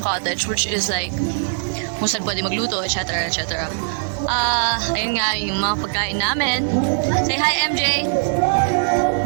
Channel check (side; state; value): left; silent; 65 dB below the other